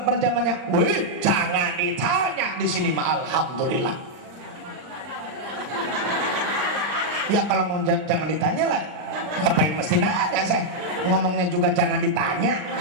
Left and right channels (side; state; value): left; late; 39 ms